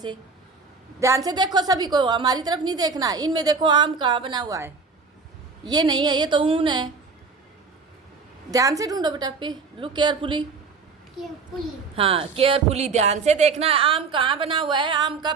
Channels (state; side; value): quieter; left; 4.7 dB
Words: ध्यान से देखो, सभी को हमारी तरफ नहीं देखना, इनमें देखो आम कहाँ बना हुआ है, ये नहीं है, ये तो ऊन है। ध्यान से ढूंढो बेटा, पे लुक केयरफुली, हाँ केयरफुली ध्यान से देखना है, आम कहाँ बना हुआ है, आम का